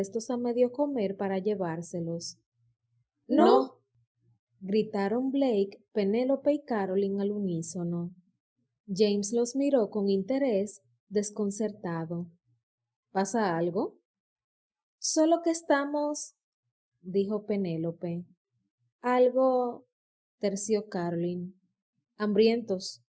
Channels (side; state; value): both; identical; correlation 1.00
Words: a medio comer para llevárselos. ¡No! Gritaron Blake, Penélope y Caroline al unísono. James los miró con interés, desconcertado. ¿Pasa algo? Solo que estamos, dijo Penélope. Algo, terció Caroline. Hambrientos,